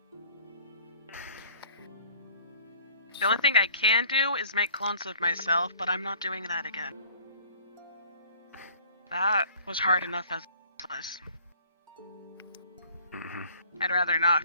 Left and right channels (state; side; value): inverted; both; correlation -0.53